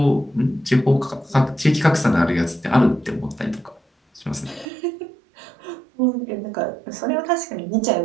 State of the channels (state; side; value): drops out; left; at 4.7 s